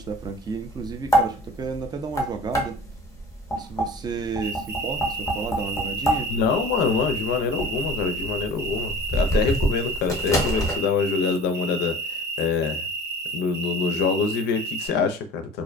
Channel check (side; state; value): both; normal; correlation 0.42